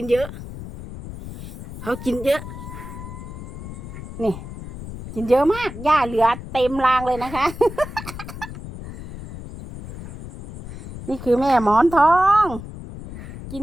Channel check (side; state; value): left; noise; rumble, 12 dB below the sound